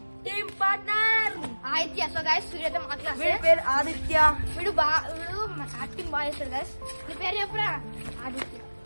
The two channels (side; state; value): both; inverted; correlation -1.00